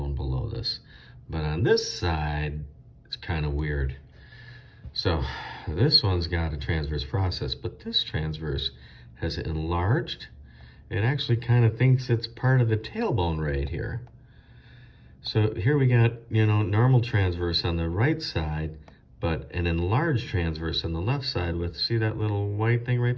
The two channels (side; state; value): both; identical; correlation 1.00